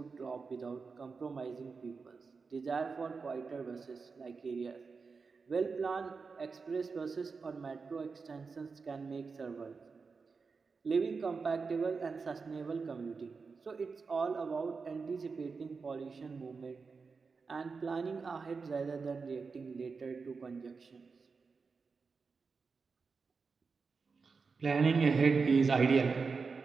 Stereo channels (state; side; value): quieter; left; 4.8 dB